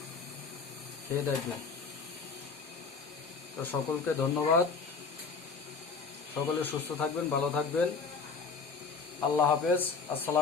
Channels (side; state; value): right; quieter; 4.9 dB